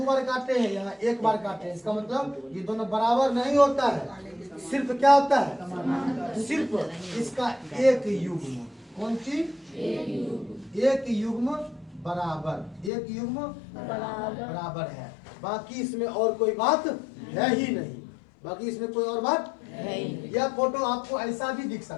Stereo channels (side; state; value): right; drops out; at 12.9 s